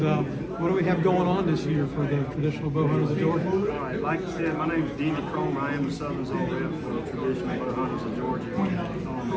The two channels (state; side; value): identical; both; correlation 1.00